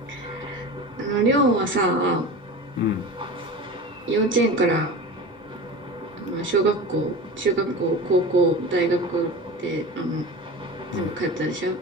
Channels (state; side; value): normal; both; correlation 0.31